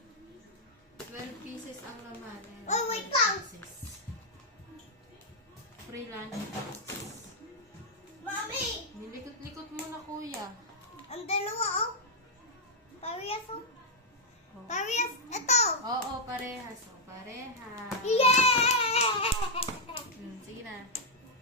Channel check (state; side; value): normal; both; correlation -0.04